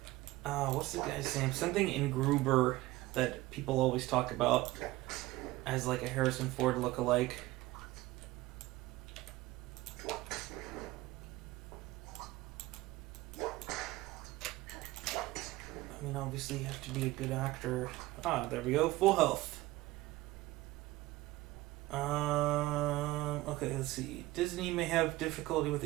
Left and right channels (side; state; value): left; quieter; 18.6 dB